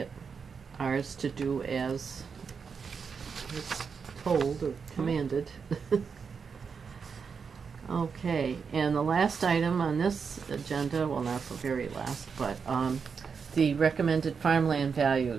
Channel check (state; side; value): quieter; left; 5.9 dB